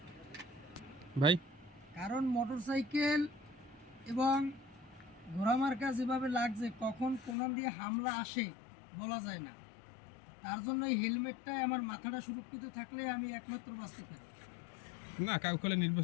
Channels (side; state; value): right; drops out; at 7.4 s